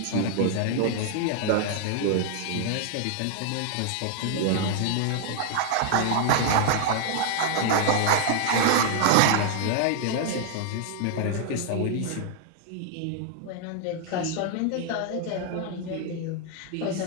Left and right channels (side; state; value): both; different; correlation 0.00